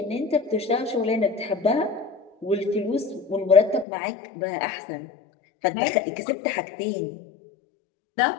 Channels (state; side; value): drops out; right; at 3.9 s